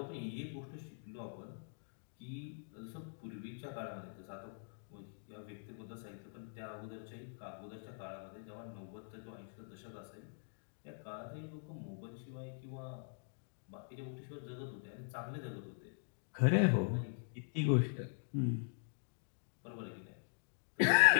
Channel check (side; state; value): right; silent; digital silence